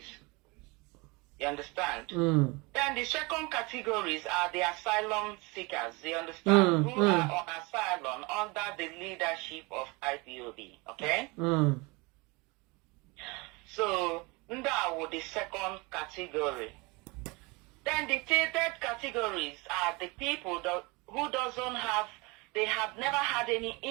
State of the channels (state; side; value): quieter; left; 26.4 dB